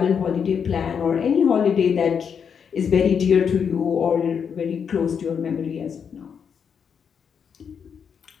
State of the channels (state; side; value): quieter; right; 7.0 dB